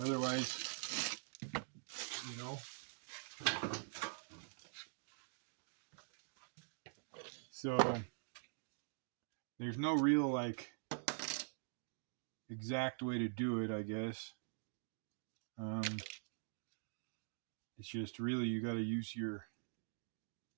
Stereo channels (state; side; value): silent; left; digital silence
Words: you know. So there's no real exact way to do it, I guess. It's just really you got to use your